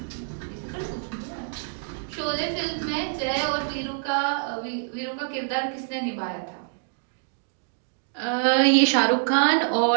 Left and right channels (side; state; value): left; silent; digital silence